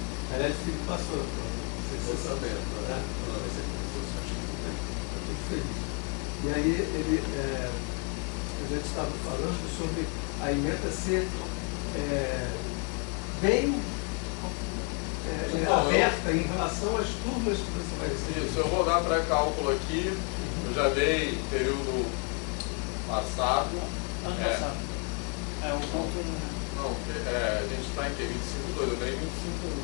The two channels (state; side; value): quieter; right; 37.4 dB